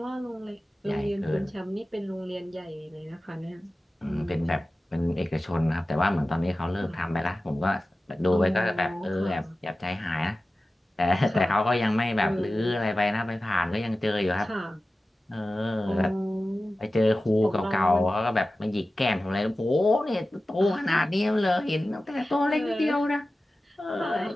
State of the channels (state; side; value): normal; both; correlation 0.95